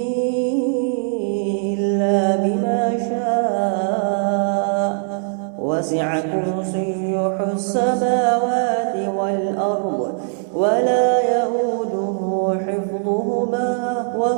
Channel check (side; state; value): left; silent; digital silence